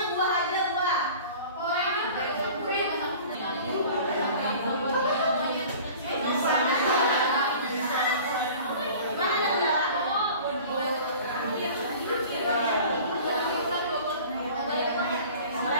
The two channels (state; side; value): inverted; both; correlation -0.43